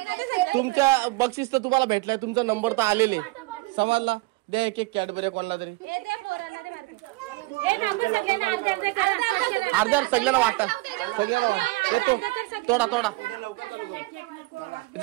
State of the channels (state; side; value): quieter; left; 23.6 dB